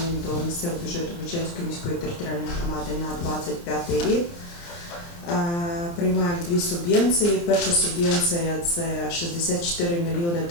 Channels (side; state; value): right; late; 29 ms